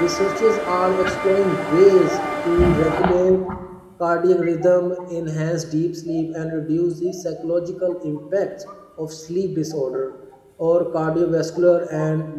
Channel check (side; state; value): both; identical; correlation 1.00